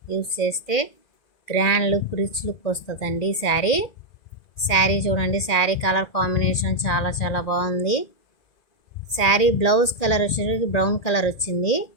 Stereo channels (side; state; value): right; late; 1.8 ms